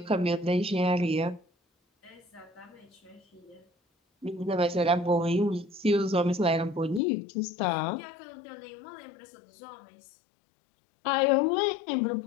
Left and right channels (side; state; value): right; drops out; at 7.0 s